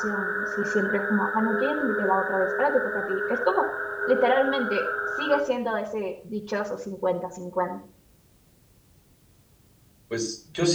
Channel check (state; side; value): identical; both; correlation 1.00